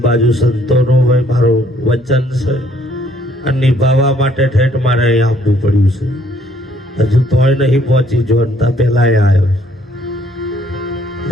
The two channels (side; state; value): both; normal; correlation 0.64